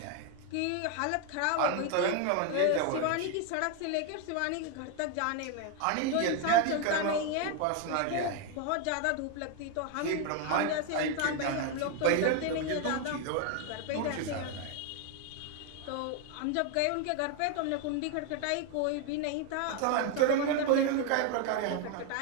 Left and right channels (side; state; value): both; different; correlation 0.01